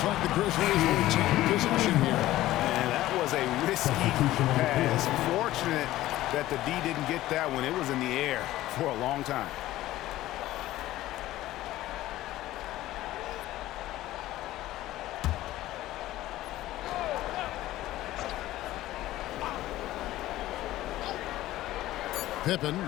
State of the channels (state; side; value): quieter; right; 15.5 dB